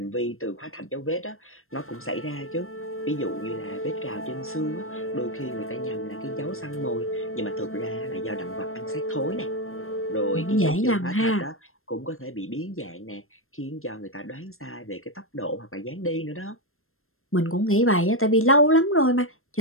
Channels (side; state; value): right; late; 0.61 ms